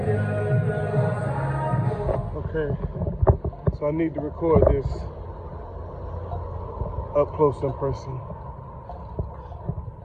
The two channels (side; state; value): both; identical; correlation 1.00